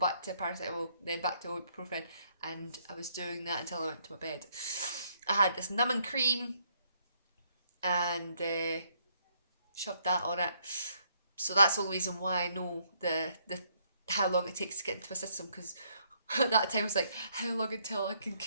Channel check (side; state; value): both; inverted; correlation -0.70